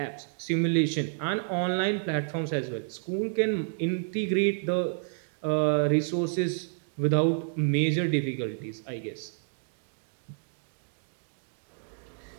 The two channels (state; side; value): silent; left; digital silence